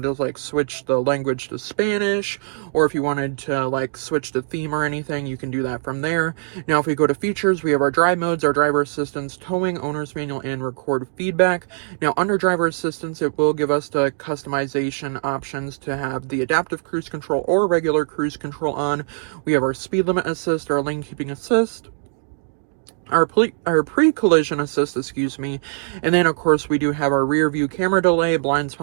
to like switch the language to Spanish, or if you wanted to like switch the theme or anything, you can do that from there. Now, if we go to features, we have our drive modes, our driver assistance, towing, owner's manual, and record feedback. Now, under driver assistance, it will give us the customization options to have the adaptive cruise control or regular cruise control on. We have our speed limit assist, our lane keeping assist, our pre-collision assist, and then of course we do have our rear view camera delay, blind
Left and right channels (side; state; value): left; silent; digital silence